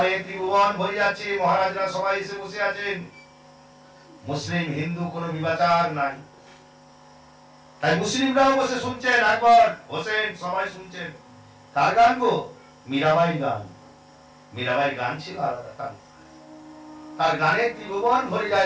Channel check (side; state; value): both; identical; correlation 1.00